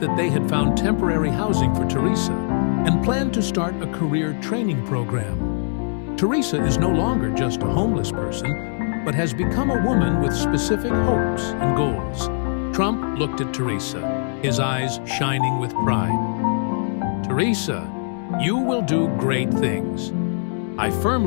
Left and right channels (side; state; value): right; silent; 64 dB below the other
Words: that they had found temporary housing for Teresa and planned to start a career training program. Teresa is no longer just a homeless person, but has become a woman with specific hopes and goals. Trump looked at Teresa, his eyes shining with pride. "Teresa, you will do great things. I